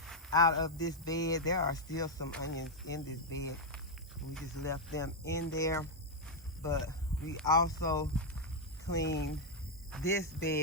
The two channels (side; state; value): both; normal; correlation 0.00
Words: out of this bed. There are still some onions in this bed. We just left them in there. But we also cleaned this